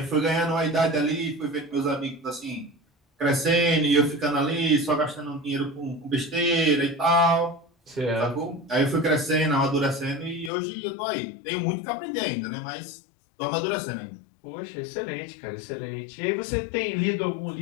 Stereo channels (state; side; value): drops out; right; at 10.5 s